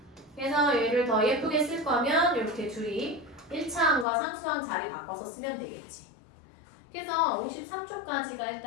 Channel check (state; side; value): drops out; right; at 4.0 s